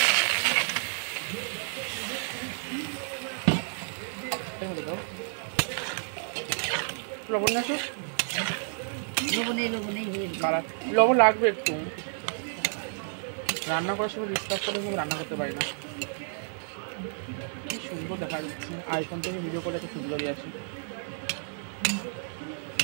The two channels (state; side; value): silent; left; digital silence